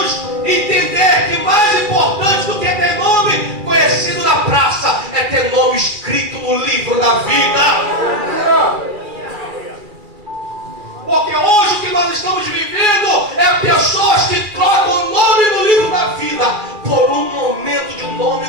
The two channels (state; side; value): late; left; 2.4 ms